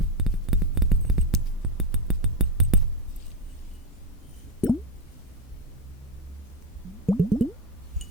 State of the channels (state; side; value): normal; both; correlation 0.08